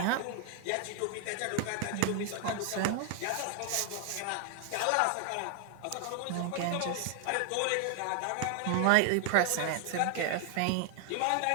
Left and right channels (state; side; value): different; both; correlation 0.00